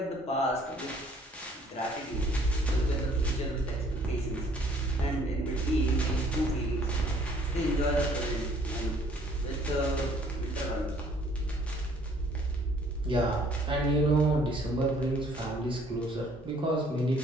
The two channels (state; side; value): normal; both; correlation 0.60